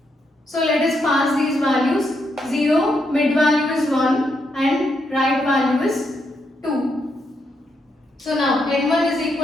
So let us pass these values. 0, mid value is 1 and right value is 2. So now n1 is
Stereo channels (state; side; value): normal; both; correlation 0.79